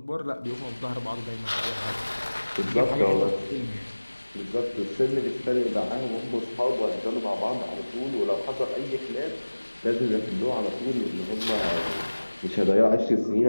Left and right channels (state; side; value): inverted; both; correlation -1.00